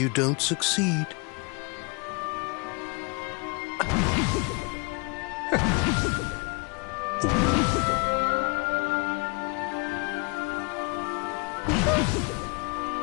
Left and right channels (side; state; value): right; quieter; 31.5 dB